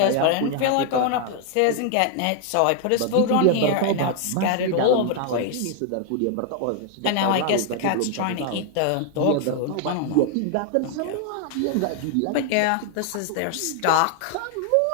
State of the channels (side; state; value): both; different; correlation 0.00